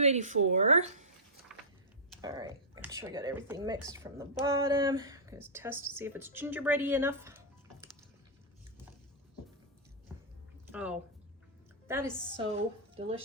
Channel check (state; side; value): normal; both; correlation -0.13